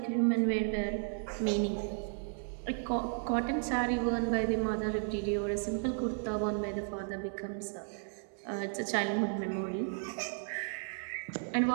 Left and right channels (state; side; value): silent; left; digital silence